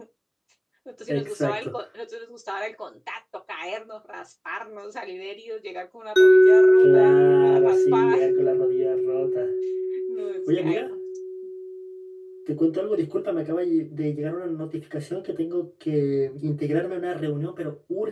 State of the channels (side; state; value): both; identical; correlation 1.00